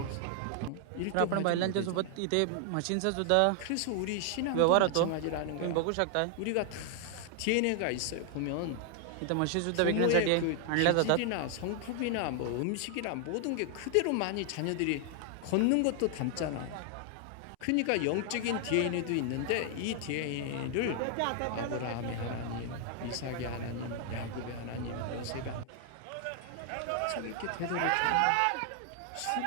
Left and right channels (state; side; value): different; both; correlation 0.00